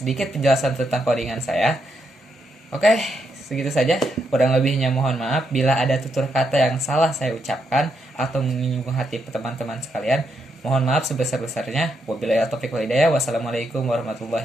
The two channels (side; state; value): both; normal; correlation 0.80